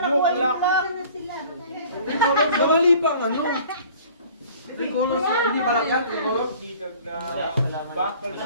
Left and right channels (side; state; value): both; inverted; correlation -0.49